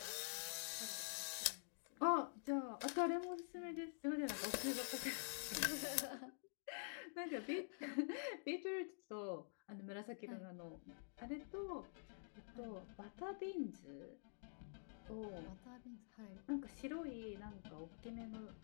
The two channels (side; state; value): right; silent; digital silence